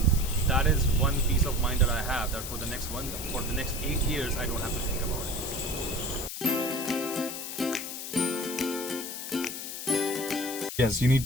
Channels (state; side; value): noise; left; hiss, 7 dB below the sound